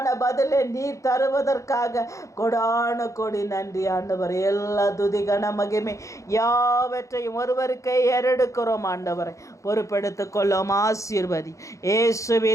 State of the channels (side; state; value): right; late; 0.15 ms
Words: பதிலை நீர் தருவதற்காக கொடான கொடி நன்றி ஆண்டவர். எல்லா துதி கன மகிமை யாவற்றையும் ஒருவருக்கே ஏறெடுக்கிறோம் ஆண்டவரை. பொறுப்பெடுத்துக் கொள்ளும். ஆசீர்வதி.